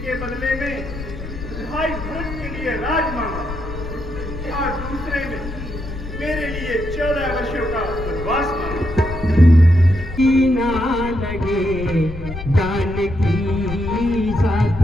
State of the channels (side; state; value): left; noise; rumble, 9 dB below the sound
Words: के बदले में भाई भरत के लिए राज मांगा और दूसरे में मेरे लिए 14 वर्षों का वनवास मांगा। ना लगे जानकी साथ